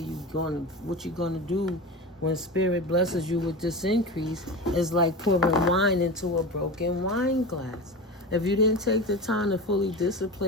what you're going to do when Spirit blesses you with this increase, it's like pouring wine into a broken wine glass. If you didn't take the time to fully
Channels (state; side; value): normal; both; correlation 0.27